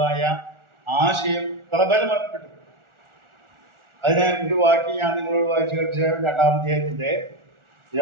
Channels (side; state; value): left; late; 1.4 ms